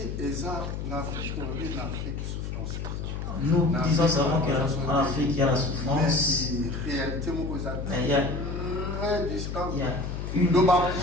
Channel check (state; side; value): noise; left; hum, 5 dB below the sound